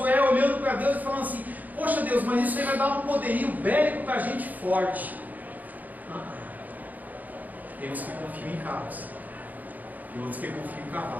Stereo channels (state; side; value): late; left; 0.081 ms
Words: olhando para Deus e falando assim: poxa Deus, mas isso aí vai dar um poderio bélico para a gente forte. Temos que confiar em carros e outros que confiam em